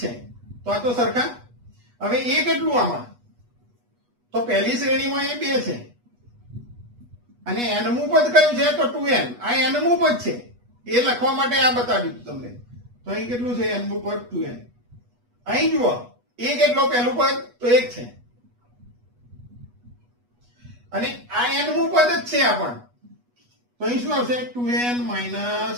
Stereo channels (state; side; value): late; left; 8.3 ms